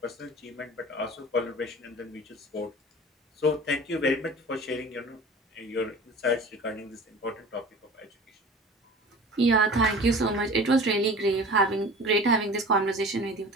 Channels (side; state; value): both; normal; correlation 0.40